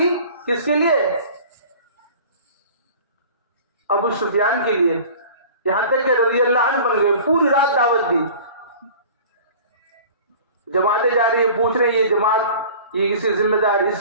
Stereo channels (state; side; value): inverted; both; correlation -0.43